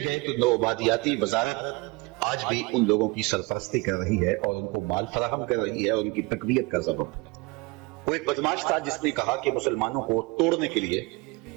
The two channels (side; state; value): left; quieter; 25.3 dB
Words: گئے تو نو آبادیاتی وزارت آج بھی ان لوگوں کی سرپرستی کر رہی ہے اور ان کو مال فراہم کر رہی ہے اور ان کی تقویت کا سبب. وہ ایک بدماش تھا جس نے کہا کہ مسلمانوں کو توڑنے کے لیے